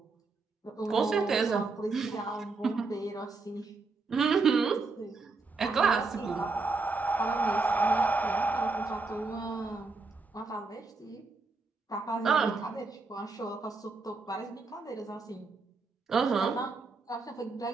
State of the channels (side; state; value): left; quieter; 3.9 dB